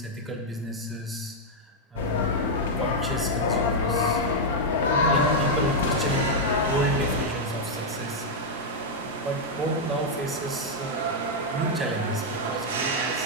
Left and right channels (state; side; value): normal; both; correlation -0.02